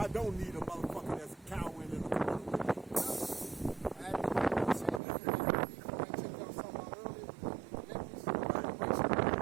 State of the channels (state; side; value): drops out; left; at 5.0 s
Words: don't need a motherfucker that's cowering in the corner with me. I had to say that. I checked out something out earlier with the necklace.